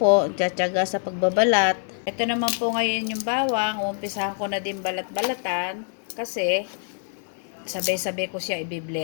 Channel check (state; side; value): silent; right; digital silence